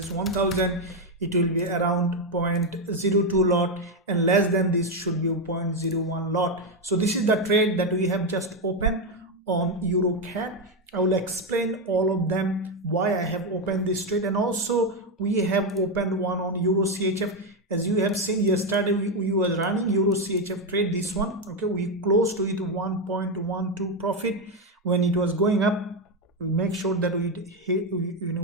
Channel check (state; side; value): normal; both; correlation 0.07